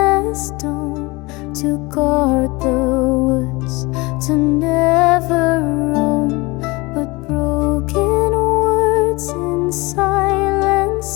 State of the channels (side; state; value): right; quieter; 24.1 dB